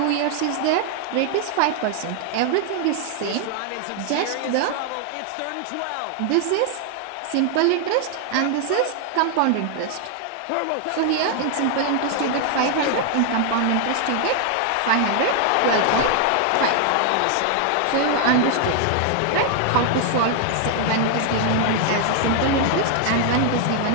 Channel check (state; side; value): different; both; correlation 0.00